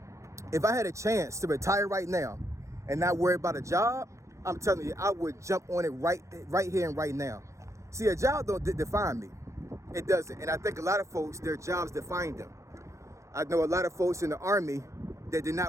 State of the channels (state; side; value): late; left; 0.15 ms